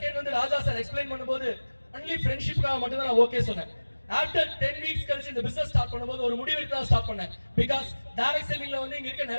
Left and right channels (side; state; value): both; inverted; correlation -1.00